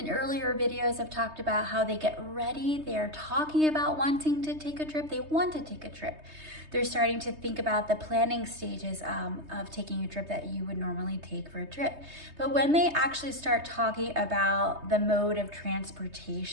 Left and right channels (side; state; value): left; late; 3.2 ms